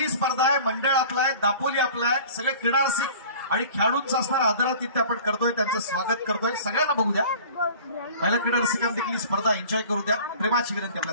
स्पर्धा आहे, मंडळ आपलं आहे, दापोली आपलं आहे. सगळे क्रीडारसिक आणि खेळाडूंचं असणारा आदरातिथ्य आपण करतोय, त्यांचं स्वागत करतोय. सगळ्यांना बघू द्या. पहिल्या क्रीडारसिकांना देखील ही स्पर्धा एन्जॉय करू द्या. प्रेमाची विनंती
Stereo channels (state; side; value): inverted; both; correlation -0.44